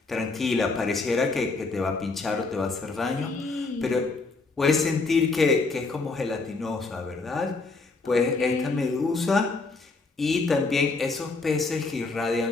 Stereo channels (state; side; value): quieter; right; 3.8 dB